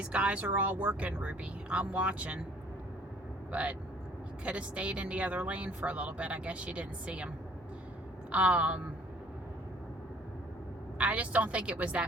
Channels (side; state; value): both; normal; correlation 0.58